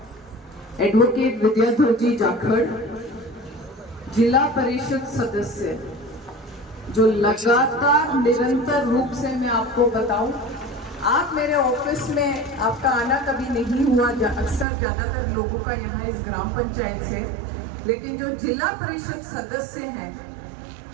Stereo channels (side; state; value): left; drops out; at 14.7 s